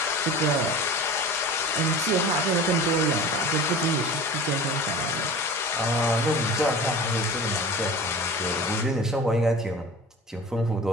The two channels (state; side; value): normal; both; correlation 0.37